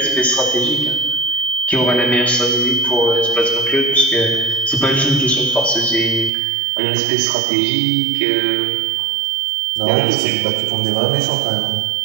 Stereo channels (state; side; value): drops out; left; at 6.3 s